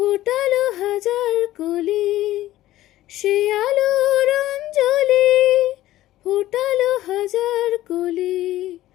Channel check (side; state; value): right; quieter; 14.9 dB